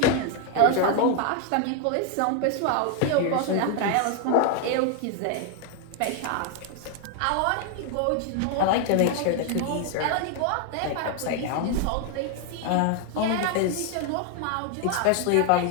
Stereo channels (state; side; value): different; both; correlation 0.01